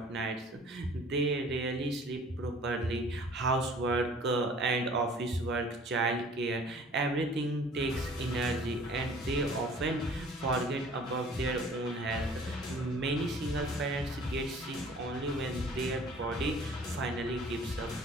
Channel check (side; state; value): both; normal; correlation 0.50